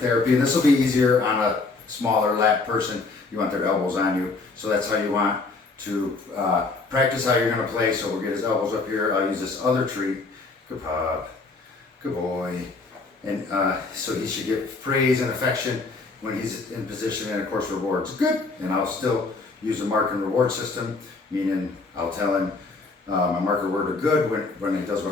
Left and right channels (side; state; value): right; quieter; 3.8 dB